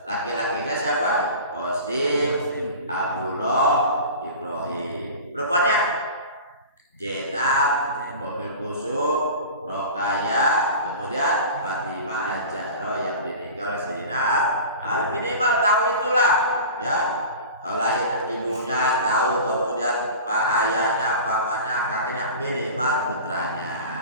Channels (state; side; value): inverted; both; correlation -0.35